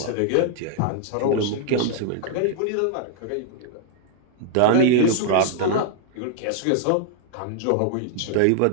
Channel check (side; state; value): both; different; correlation 0.00